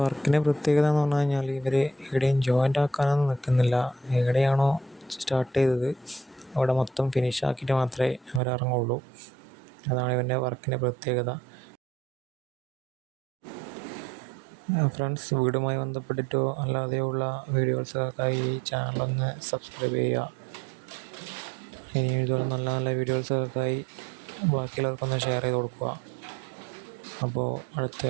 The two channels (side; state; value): left; drops out; at 8.4 s